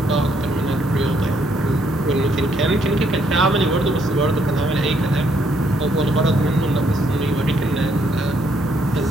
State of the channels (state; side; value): normal; both; correlation 0.71